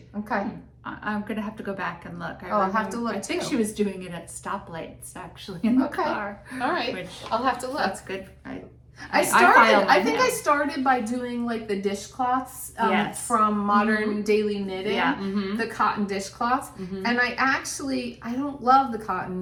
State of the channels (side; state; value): both; identical; correlation 1.00